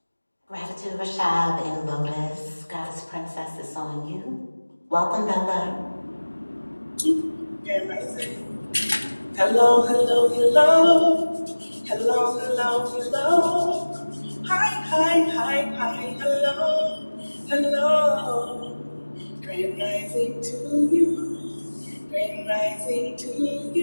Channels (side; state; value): both; inverted; correlation -1.00